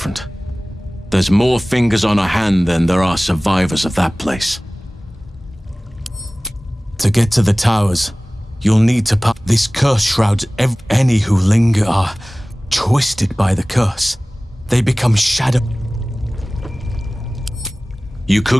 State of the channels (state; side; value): normal; both; correlation 0.98